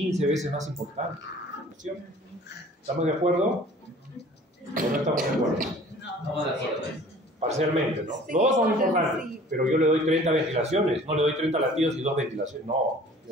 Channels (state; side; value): normal; both; correlation 0.49